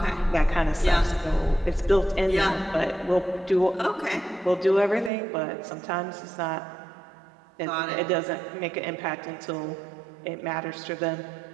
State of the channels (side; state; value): left; drops out; at 5.1 s